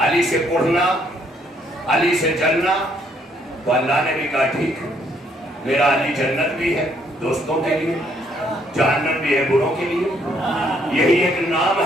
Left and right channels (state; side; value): normal; both; correlation 0.69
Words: अली से कुढ़ना, अली से जलना, तो अल्लाह ने भी कहा ठीक, मेरा अली जन्नत भी है दोस्तों के लिए, जहन्नम भी है बुरों के लिए। यही एक नाम